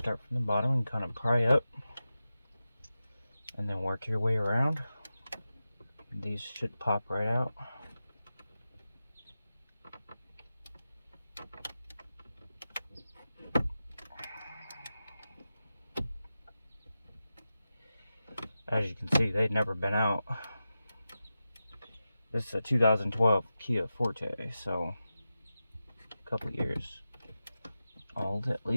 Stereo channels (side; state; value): both; inverted; correlation -0.93